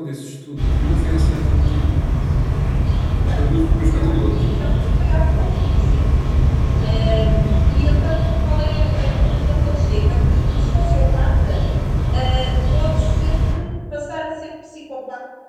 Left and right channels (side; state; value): both; identical; correlation 1.00